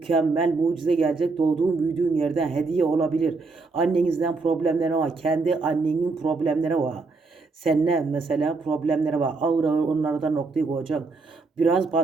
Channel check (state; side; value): quieter; left; 4.0 dB